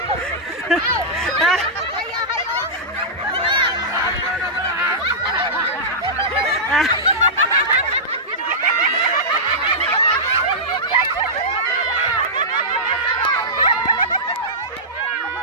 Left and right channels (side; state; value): both; normal; correlation -0.13